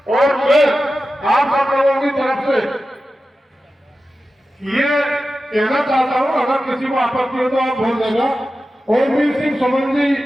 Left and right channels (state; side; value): normal; both; correlation 0.93